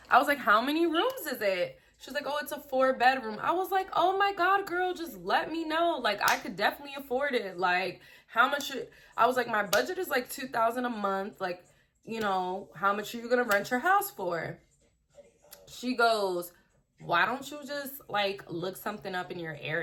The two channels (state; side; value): identical; both; correlation 1.00